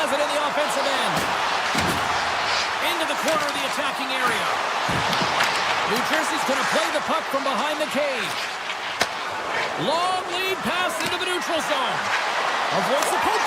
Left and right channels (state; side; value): identical; both; correlation 1.00